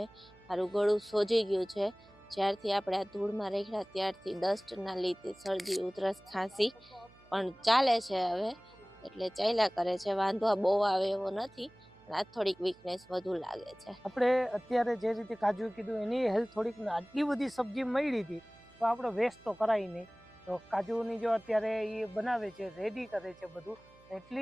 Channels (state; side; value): noise; right; hum, 27 dB below the sound